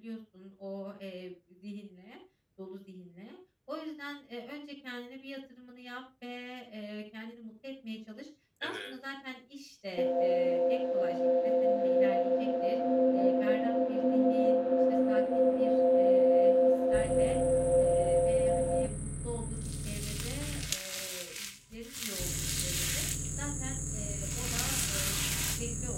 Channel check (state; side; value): identical; both; correlation 1.00